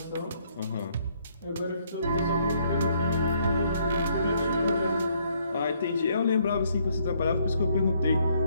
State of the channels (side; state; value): both; inverted; correlation -0.69